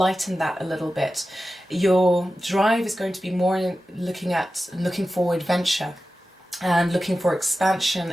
that a little bit. Your drive is going to be more looking for adventure and looking for expansion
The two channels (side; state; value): both; normal; correlation 0.94